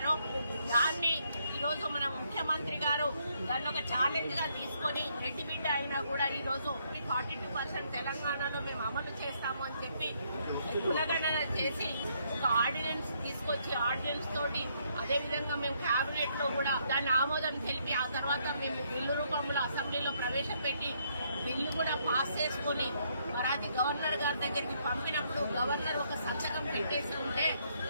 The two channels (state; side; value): inverted; both; correlation -0.72